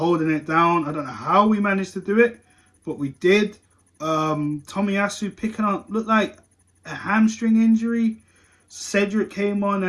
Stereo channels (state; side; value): identical; both; correlation 1.00